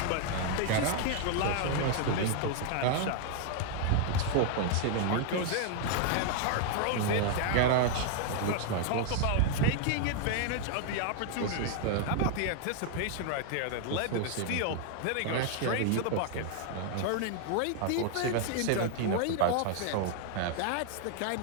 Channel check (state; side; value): different; both; correlation 0.00